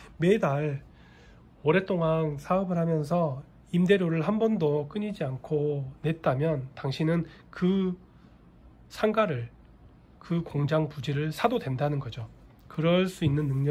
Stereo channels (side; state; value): both; identical; correlation 1.00